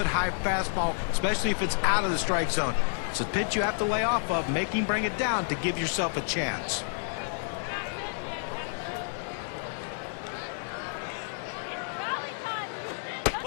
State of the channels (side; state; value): right; silent; digital silence